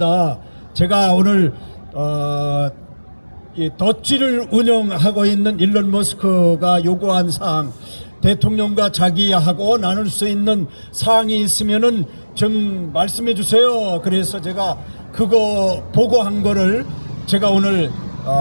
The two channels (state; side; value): inverted; both; correlation -1.00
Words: 제가 오늘 이 덧지를 운영하고 있는 일론 머스크가 요구한 사항, 대통령과 자기하고 나눌 수 있는 사항이 있으면은 좀 말씀해 주세요. 그래서 제가 그거 보고한 거를 제가 오늘